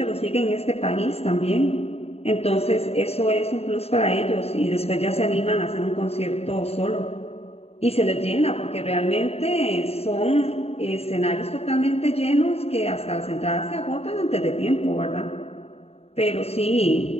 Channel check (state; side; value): late; right; 0.29 ms